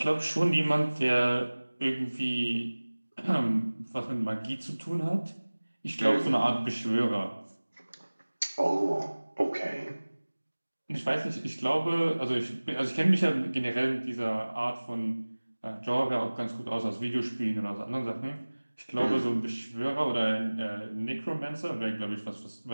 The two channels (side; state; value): both; inverted; correlation -1.00